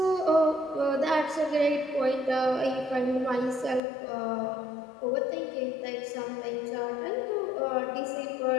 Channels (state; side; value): drops out; right; at 3.8 s